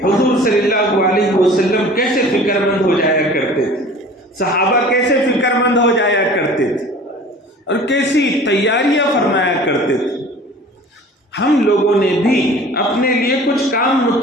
حضور صلی اللہ علیہ وسلم کیسے فکر مند ہو جایا کرتے تھے، صحابہ کیسے فکر مند ہو جایا کرتے تھے اور کیسی تیاریاں فرمایا کرتے تھے۔ ہم لوگوں نے بھی اپنے لیے کچھ کام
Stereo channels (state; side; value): normal; both; correlation 0.44